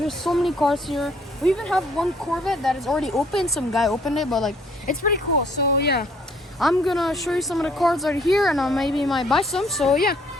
so many cars here. We even have one Corvette that is already open. Some guy opened it, but like, it's pretty cool. So yeah, I'm gonna show you some of the cars that are here and I maybe might buy some. So yeah,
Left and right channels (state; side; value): normal; both; correlation 0.62